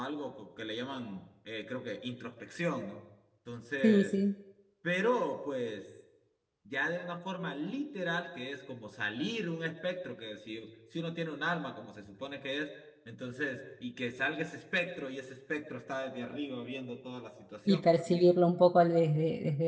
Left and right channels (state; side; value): identical; both; correlation 1.00